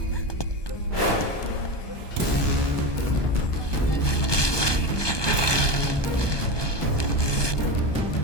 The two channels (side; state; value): right; late; 1.2 ms